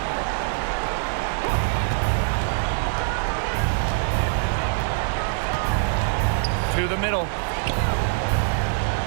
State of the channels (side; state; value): left; silent; digital silence